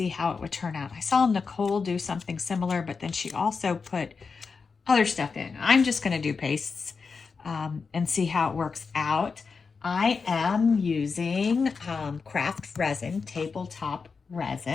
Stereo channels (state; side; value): quieter; right; 5.0 dB